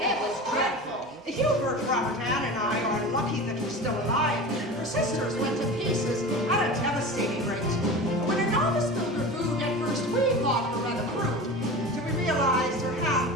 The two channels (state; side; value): normal; both; correlation 0.32